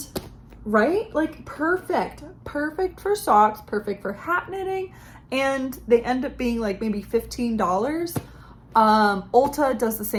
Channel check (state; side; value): identical; both; correlation 1.00